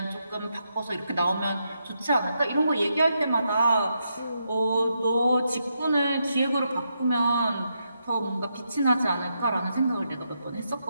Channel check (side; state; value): both; inverted; correlation -0.82